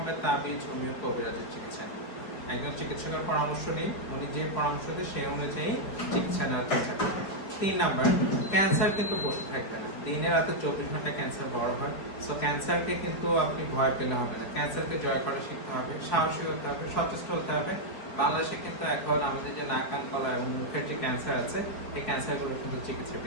তাবিজ, হোমিও, কবিরাজের চিকিৎসা নিন। একজন চিকিৎসকের পরামর্শ নিন, উনি যে পরামর্শ দেয় সেই অনুযায়ী চিকিৎসা নেওয়ার চেষ্টা করবেন। 3 নাম্বার, ক্যান্সার কিন্তু বসে থাকবে না, দিনে রাতে 24 ঘন্টা ক্যান্সার বড় হয়। সো ক্যান্সারকে কিন্তু আপনি ভয় পেলে হবে না, ক্যান্সারকে জয় করা শিখতে হবে, সাহসী হতে হবে, সচেষ্ট হতে হবে। বাংলাদেশে কিন্তু এখন আমাদের যে নাক, কান, গলা এবং মুখের যে ক্যান্সার আছে, এই ক্যান্সারগুলো কিন্তু চিকিৎসা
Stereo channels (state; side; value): late; right; 4.7 ms